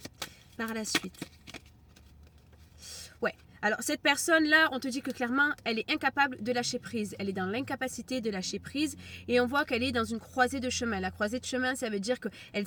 par la suite. Ouais. Alors, cette personne-là, on te dit que clairement, elle est incapable de lâcher prise. Elle est dans l'incapacité de lâcher prise et on voit qu'elle est dans une croisée de chemin. La croisée de chemin, ça veut dire qu'elle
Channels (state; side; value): identical; both; correlation 1.00